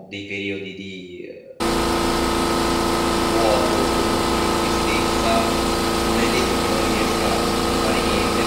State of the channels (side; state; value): both; identical; correlation 1.00